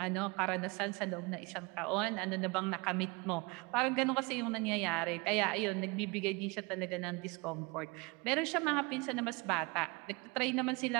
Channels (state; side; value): quieter; left; 26.9 dB